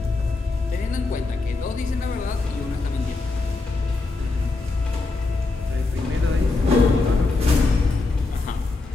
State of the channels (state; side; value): quieter; right; 3.5 dB